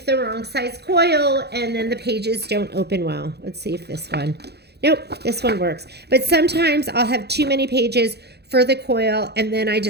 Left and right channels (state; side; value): late; left; 0.48 ms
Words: the wrong size coil and then the pages don't open well. Let's see if this one. Nope, this one works. But sometimes I'll have too many pages for the coil, and then I